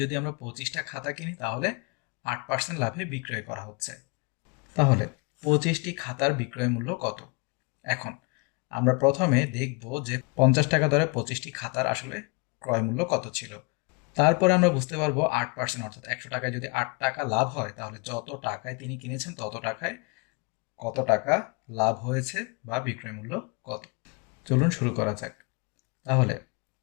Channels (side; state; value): right; quieter; 30.2 dB